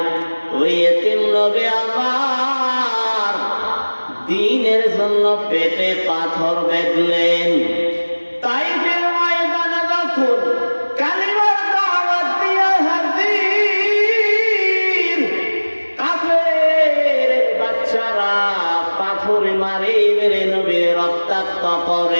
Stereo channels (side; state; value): both; inverted; correlation -1.00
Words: ওই এতিম নবী আমার দ্বীনের জন্য পেটে পাথর বেঁধলেন। তাইফের ময়দানে যখন কালিমার দাওয়াত দিয়ে হাজির, কাফের বাচ্চারা পাথর মারি মেরে নবীর রক্তাক্ত